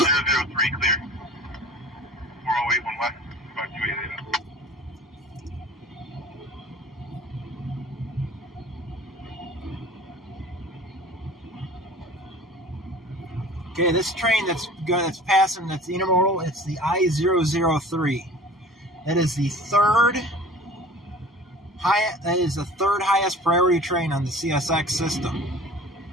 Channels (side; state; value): both; normal; correlation 0.44